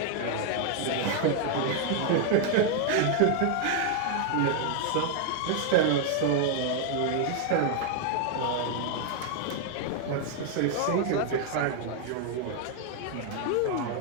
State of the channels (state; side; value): different; both; correlation 0.00